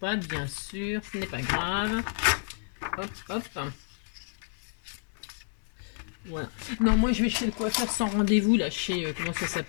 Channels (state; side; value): silent; right; digital silence